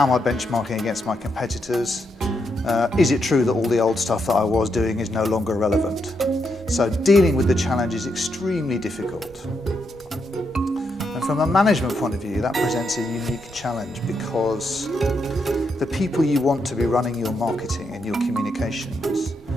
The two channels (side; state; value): both; normal; correlation 0.81